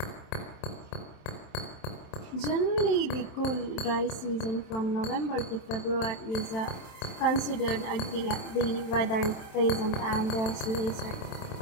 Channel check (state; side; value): late; right; 27 ms